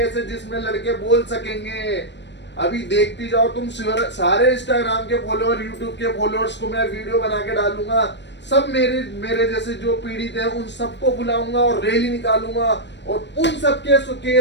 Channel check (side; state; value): right; late; 0.51 ms